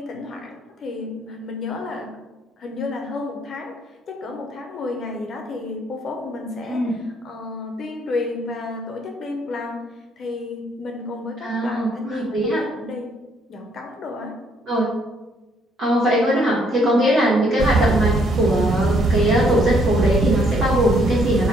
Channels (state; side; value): normal; both; correlation 0.67